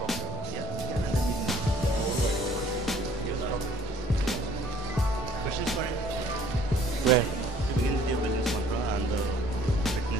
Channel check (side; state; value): both; normal; correlation 0.56